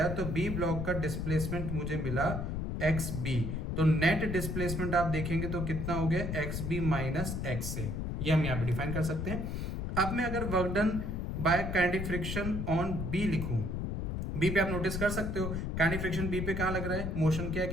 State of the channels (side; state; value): left; noise; rumble, 2 dB below the sound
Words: तो बी ब्लॉक का डिस्प्लेसमेंट मुझे मिला एक्स बी। तो नेट डिस्प्लेसमेंट आप देखेंगे तो कितना हो गया, एक्स बी माइनस एक्स ए। ये हम यहां पे डिफाइन कर सकते हैं। अब मैं अगर work done by kinetic friction on B लिखूं, बी पे आप नोटिस कर सकते हो काइनेटिक फ्रिक्शन बी पे कहां लग रहा है, मोशन के